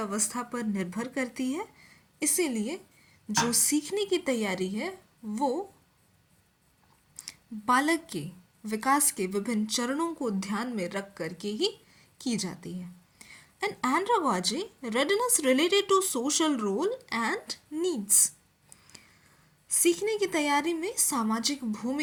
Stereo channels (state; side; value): identical; both; correlation 1.00